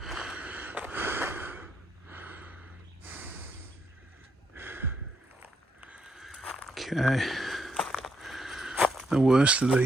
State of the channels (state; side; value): normal; both; correlation 0.75